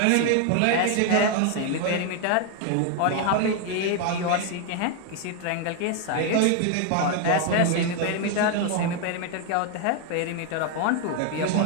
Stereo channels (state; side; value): different; both; correlation 0.01